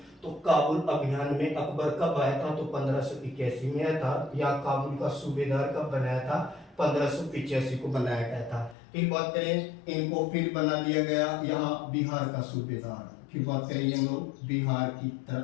तो काबुल अभियान में अकबर कब आया था, तो 1581 में आया था। या काबुल का सूबेदार कब बनाया था, 1585 को बनाया गया था। फिर बात करें इनको फिर बना दिया गया यहाँ बिहार का सूबेदार। फिर बात करें हम लोग बिहार की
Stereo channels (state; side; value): drops out; right; at 8.8 s